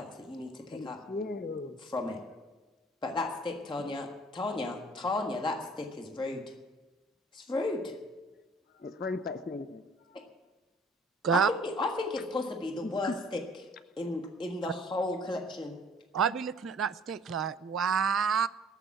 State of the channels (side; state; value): both; normal; correlation 0.53